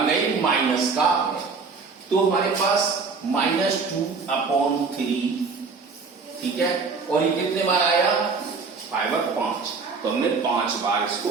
रहे कि माइनस का है। तो हमारे पास -2/3, ठीक है। और ये कितने बार आया, 5 और 5, तो हमने 5 बार इसको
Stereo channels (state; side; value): quieter; left; 4.7 dB